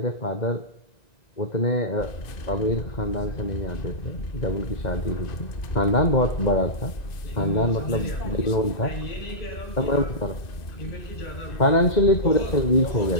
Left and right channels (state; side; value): late; right; 1.9 ms